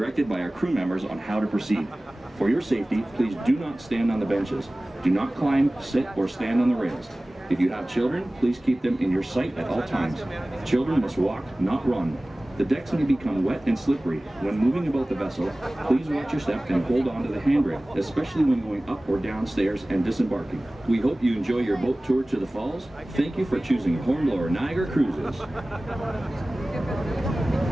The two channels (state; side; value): normal; both; correlation 0.98